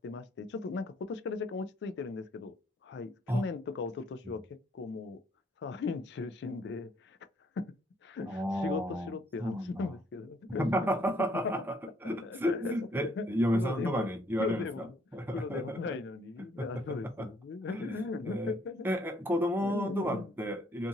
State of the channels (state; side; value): normal; both; correlation 0.66